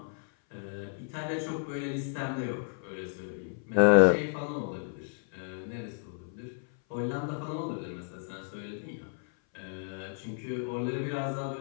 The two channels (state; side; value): silent; right; 56 dB below the other